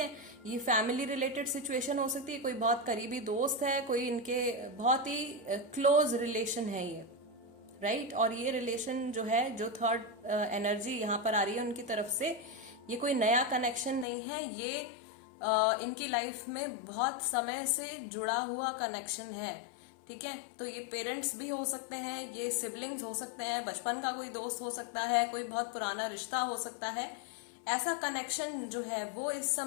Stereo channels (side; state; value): right; drops out; at 14.1 s